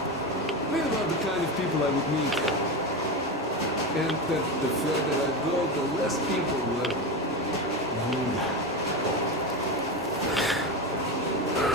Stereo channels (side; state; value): both; normal; correlation 0.18